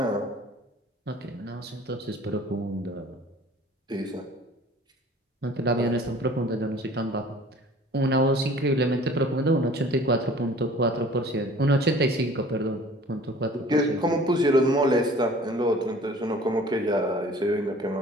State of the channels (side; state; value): both; normal; correlation 0.48